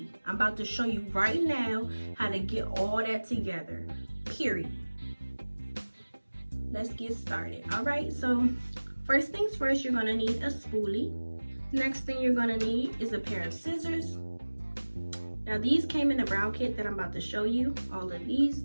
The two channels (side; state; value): both; inverted; correlation -1.00